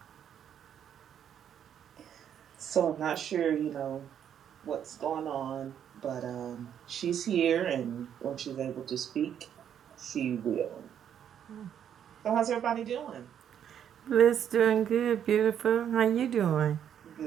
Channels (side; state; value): left; quieter; 9.2 dB